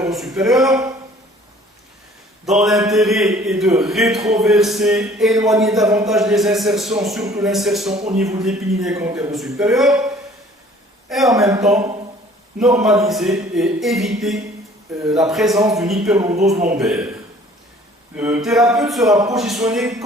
dans l'intérêt est de rétroverser, éloigner davantage les insertions, surtout l'insertion au niveau de l'épiniliaque antéro-supérieur, et en même temps normaliser et éviter la présence d'une hyperlordose lombaire. Le thérapeute sera positionné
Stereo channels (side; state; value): both; normal; correlation 0.53